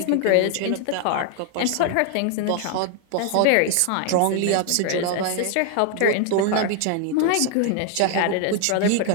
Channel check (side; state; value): both; different; correlation 0.00